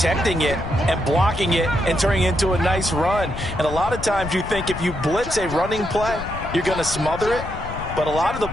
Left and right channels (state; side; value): noise; left; rumble, 9 dB below the sound